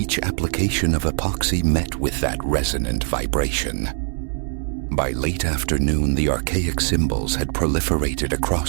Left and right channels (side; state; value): left; silent; 64 dB below the other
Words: application of epoxy met with that resonant vibration. By late afternoon, the archaic symbols had proliferated